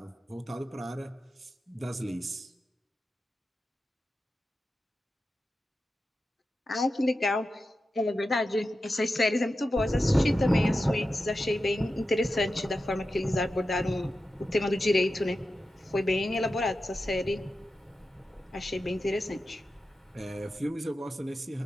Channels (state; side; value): normal; both; correlation 0.91